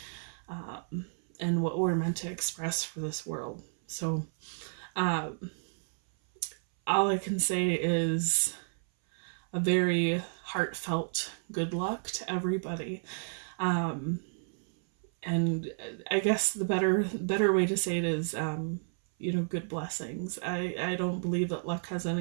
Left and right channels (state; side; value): silent; left; 57 dB below the other